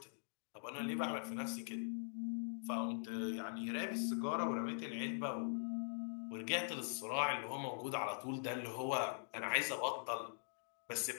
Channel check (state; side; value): silent; right; digital silence